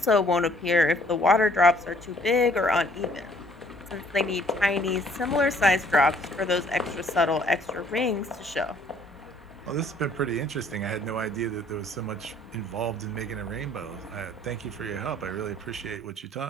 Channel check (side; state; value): both; normal; correlation 0.60